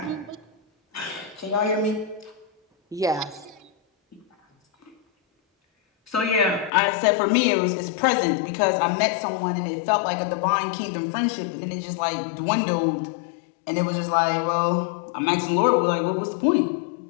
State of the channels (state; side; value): drops out; right; at 6.7 s